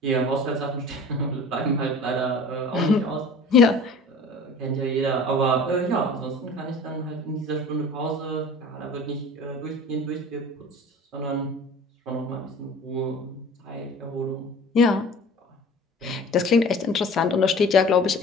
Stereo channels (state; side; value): normal; both; correlation 0.43